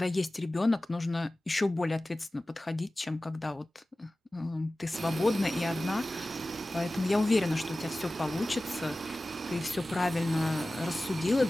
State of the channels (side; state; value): both; normal; correlation 0.96